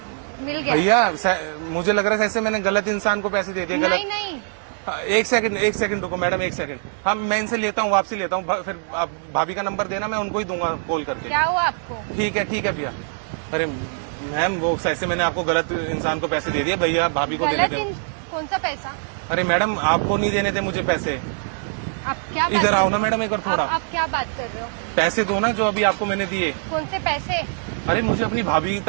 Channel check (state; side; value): silent; left; digital silence